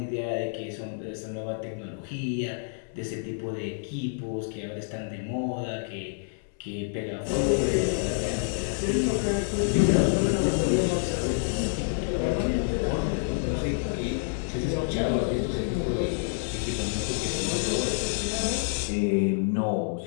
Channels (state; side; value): silent; right; 59 dB below the other